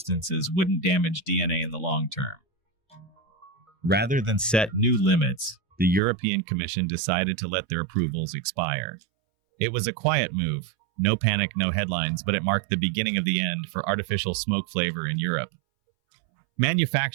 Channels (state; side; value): drops out; left; at 6.0 s